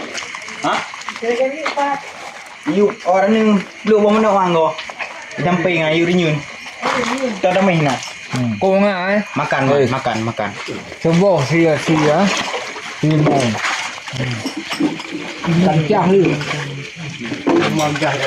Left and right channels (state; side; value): identical; both; correlation 1.00